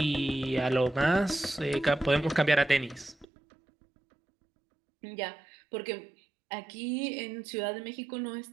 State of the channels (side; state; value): left; drops out; at 3.2 s